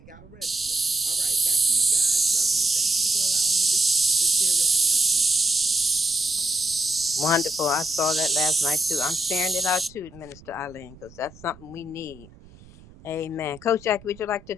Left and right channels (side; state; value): right; noise; rumble, 23 dB below the sound